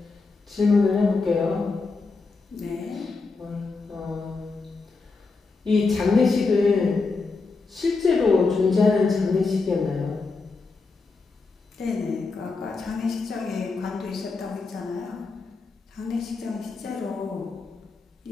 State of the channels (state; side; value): quieter; right; 4.1 dB